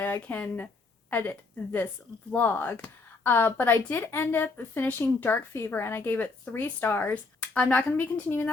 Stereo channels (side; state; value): right; quieter; 3.8 dB